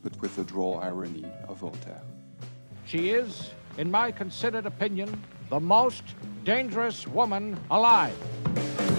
but with the droll irony of Voltaire. She is, in my considered opinion, the most dangerous woman alive.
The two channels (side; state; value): both; inverted; correlation -1.00